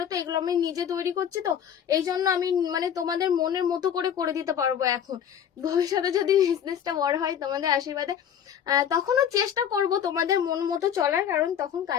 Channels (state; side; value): quieter; right; 8.9 dB